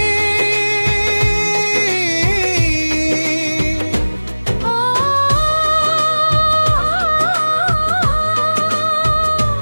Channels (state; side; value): inverted; both; correlation -1.00